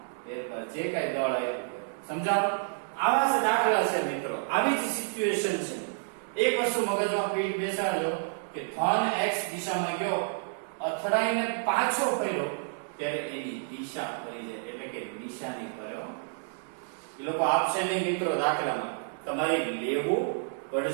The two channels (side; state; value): left; silent; digital silence